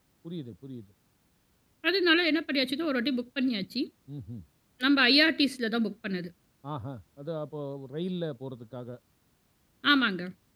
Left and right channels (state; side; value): identical; both; correlation 1.00